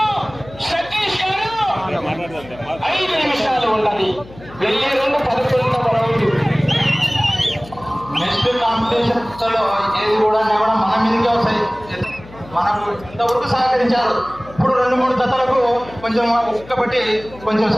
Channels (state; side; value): noise; left; hum, 19 dB below the sound